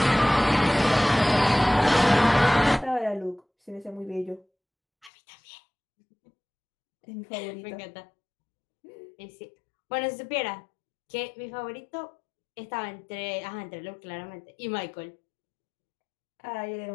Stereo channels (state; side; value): drops out; right; at 5.1 s